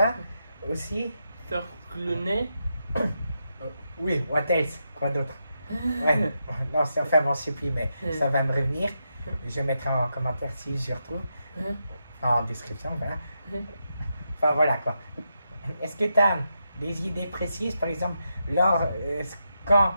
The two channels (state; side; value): inverted; both; correlation -0.84